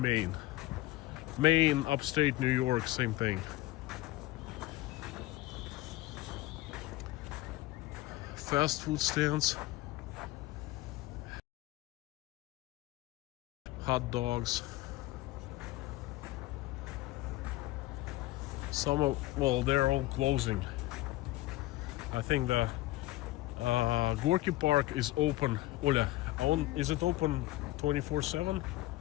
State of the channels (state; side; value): quieter; right; 17.6 dB